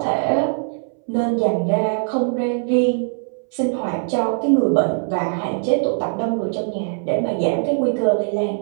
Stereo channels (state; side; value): silent; left; 65 dB below the other